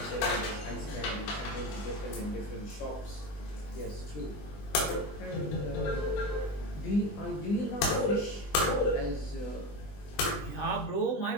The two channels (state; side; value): late; right; 20 ms